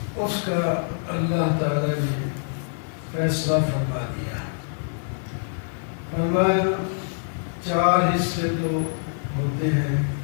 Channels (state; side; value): silent; right; digital silence